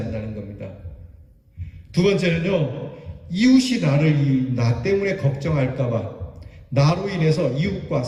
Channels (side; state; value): both; identical; correlation 1.00